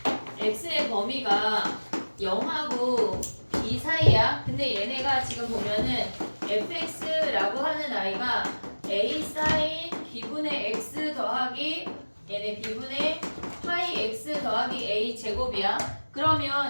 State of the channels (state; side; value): inverted; both; correlation -1.00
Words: X의 범위가 0하고 B 사이야. 근데 얘네가 지금 보면은 fx라고 하는 아이가 A 사인 B분의 X 더하기 얘네 B분의 파이 X 더하기 A 제곱이야.